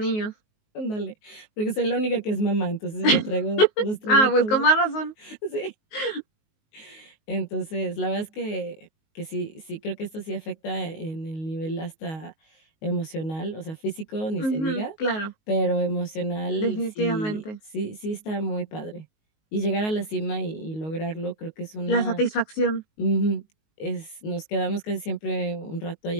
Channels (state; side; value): late; right; 19 ms